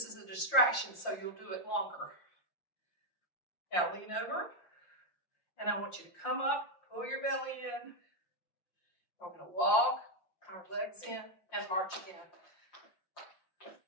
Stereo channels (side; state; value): right; late; 5.7 ms